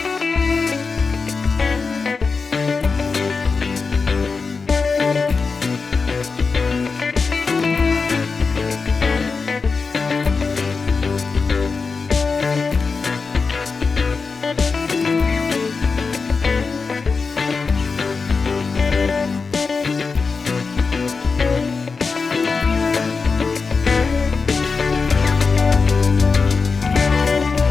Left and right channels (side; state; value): right; quieter; 4.7 dB